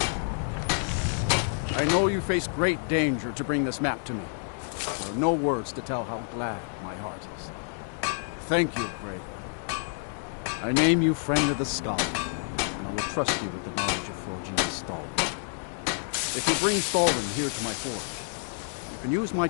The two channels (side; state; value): right; silent; 59 dB below the other